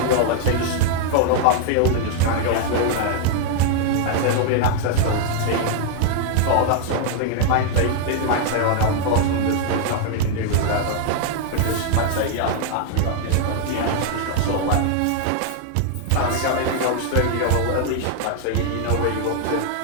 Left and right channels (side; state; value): both; different; correlation 0.00